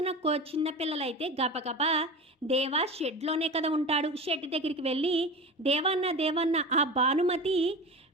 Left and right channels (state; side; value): normal; both; correlation 0.30